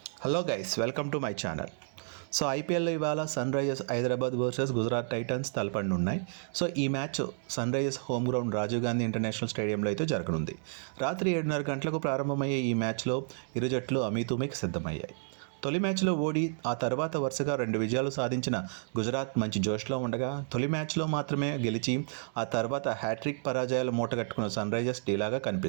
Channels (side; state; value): left; silent; digital silence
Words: Hello guys, welcome to my channel. So ఐపీఎల్లో ఇవాళ sunrisers Hyderabad versus Gujarat titans తలపడనున్నాయి. So ఈ match sunrisers home ground Rajiv Gandhi international స్టేడియంలో అయితే జరగనుంది. రాత్రి 7:30 గంటలకు ప్రారంభమయ్యే ఈ మ్యాచ్లో ఇరు జట్లు అమీతుమీకి సిద్ధమయ్యాయి. తొలి మ్యాచ్లో ఓడి ఆ తర్వాత వరుసగా 2 విజయాలు సాధించిన గుజరాత్ మంచి జోష్లో ఉండగా, తొలి మ్యాచ్లో మాత్రమే గెలిచి ఆ తర్వాత హ్యాట్రిక్ పరాజయాలు మూటగట్టుకున్న సన్ రైజర్స్ డీలాగా